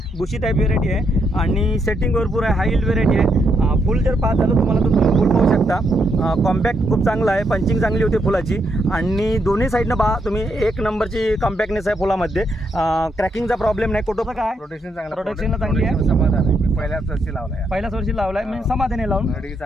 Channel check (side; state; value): both; normal; correlation 0.78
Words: बुशी टाईप व्हेरायटी आहे आणि सेटिंग भरपूर आहे, हाय यील्ड व्हेरायटी आहे। फुल जर पाहत झालं तुम्हाला तर तुम्ही फुल पाहू शकता। कॉम्पॅक्ट खूप चांगला आहे, पंचिंग चांगली होती फुलाची आणि दोन्ही साईडनं पहा तुम्ही एक नंबरची कॉम्पॅक्टनेस आहे फुलामध्ये। क्रॅकिंगचा प्रॉब्लेम नाही। कुठं काय प्रोटेक्शन चांगलं, प्रोटेक्शनला चांगली आहे, समाधान आहे। मी पहिल्याच वर्षी लावलाय, म्हणजे समाधानी लावून गाडी